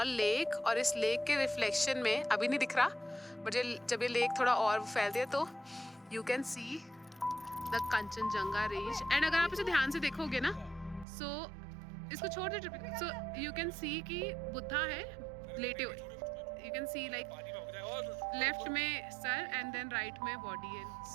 lake. और इस लेक के रिफ्लेक्शन में अभी नहीं दिख रहा, बट जब ये लेक थोड़ा और फैलती है तो you can see the Kanchenjunga range. And अगर आप इसे ध्यान से देखोगे ना, सो इसको छोड़ दे. सो यू कैन सी कि बुद्धा है लेटे हुए. You can see like left में सर एंड देन राइट में body. And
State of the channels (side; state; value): left; drops out; at 11.1 s